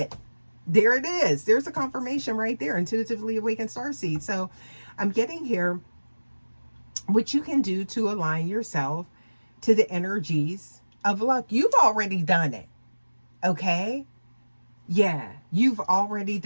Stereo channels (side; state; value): both; inverted; correlation -1.00